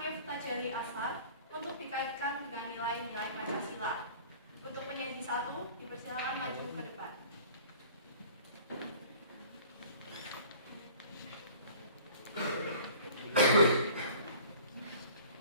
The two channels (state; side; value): inverted; both; correlation -0.48